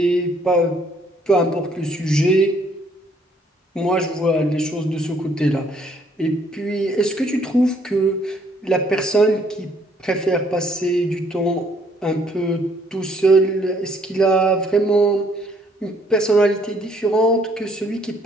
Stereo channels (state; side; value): normal; both; correlation 0.65